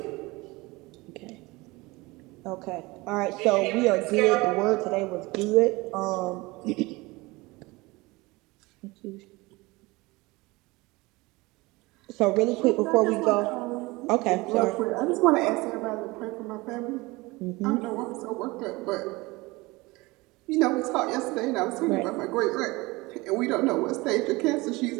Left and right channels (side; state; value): left; quieter; 22.7 dB